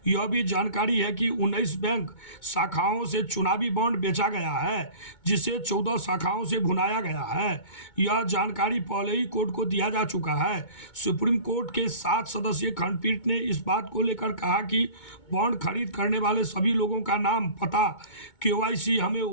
यह भी जानकारी है कि 19 बैंक शाखाओं से चुनावी बॉन्ड बेचा गया है, जिसे 14 शाखाओं से भुनाया गया है। यह जानकारी पहले ही कोर्ट को दिया जा चुका है। सुप्रीम कोर्ट के 7 सदस्यीय खंडपीठ ने इस बात को लेकर कहा कि बॉन्ड खरीद करने वाले सभी लोगों का नाम, पता, केवाईसी हमें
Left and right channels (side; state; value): right; late; 2.2 ms